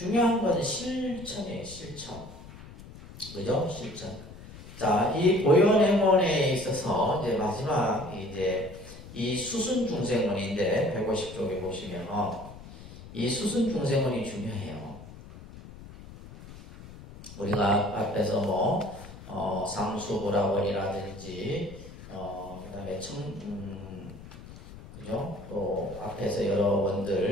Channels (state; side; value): noise; left; rumble, 16 dB below the sound